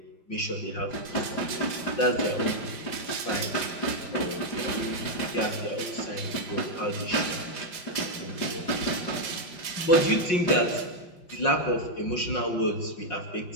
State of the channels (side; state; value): right; late; 5.7 ms